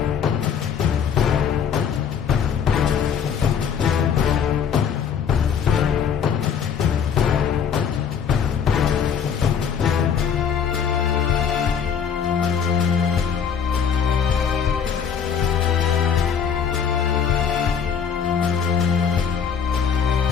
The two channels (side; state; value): right; quieter; 7.2 dB